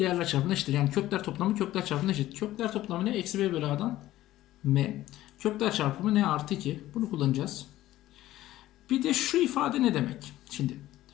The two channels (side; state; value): right; quieter; 14.9 dB